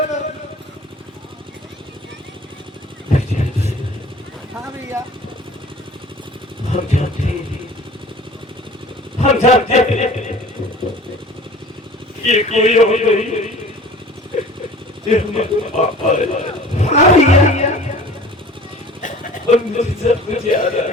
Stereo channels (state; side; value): normal; both; correlation 0.45